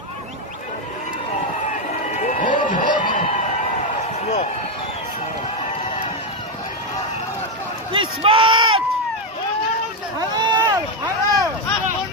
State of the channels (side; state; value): both; normal; correlation 0.06